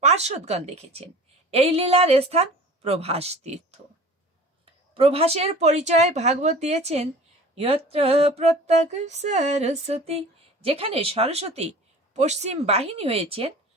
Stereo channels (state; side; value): normal; both; correlation 0.42